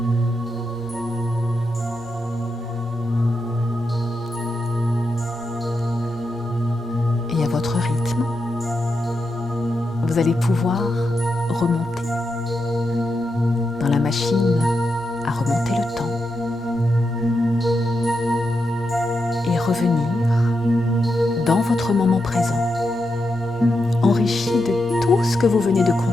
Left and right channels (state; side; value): normal; both; correlation 0.85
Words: allez pouvoir remonter dans la machine à remonter le temps et revenir dans votre moment présent, enrichi de tout ce que vous venez de